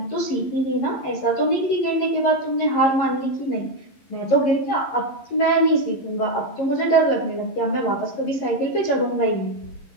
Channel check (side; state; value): right; late; 11 ms